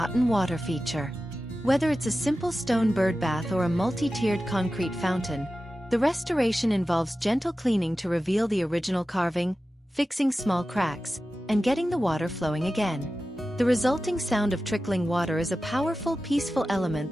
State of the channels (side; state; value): both; normal; correlation 0.94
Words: water feature. Whether it's a simple stone bird bath or a multi-tiered concrete fountain, the restoration involves gentle cleaning to reveal the original carving, fixing small cracks, and getting the water flowing again. The resulting sound of trickling water is a powerful, peaceful element